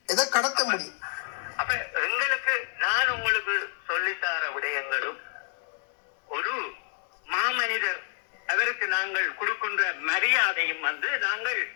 எதை கடத்த முடியும்? அப்ப எங்களுக்கு நான் உங்களுக்கு சொல்லித்தார விடயங்களும் ஒரு மாமனிதர் அவருக்கு நாங்கள் கொடுக்கின்ற மரியாதையும் வந்து நாங்கள்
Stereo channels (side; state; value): right; silent; 56 dB below the other